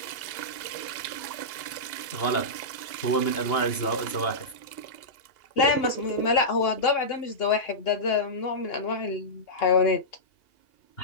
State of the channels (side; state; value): right; late; 2.8 ms